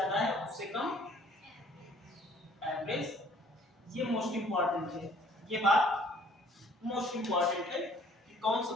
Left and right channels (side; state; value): both; normal; correlation 0.57